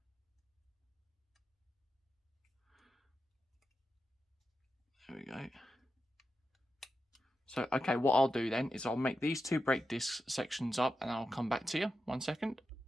There we go. So, okay, what I'll do then is I'll make these 2 brake disc sections up and I'll come back to you. 1 second.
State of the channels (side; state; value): both; normal; correlation 0.89